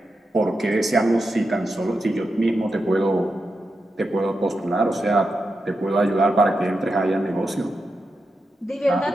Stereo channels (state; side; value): normal; both; correlation 0.88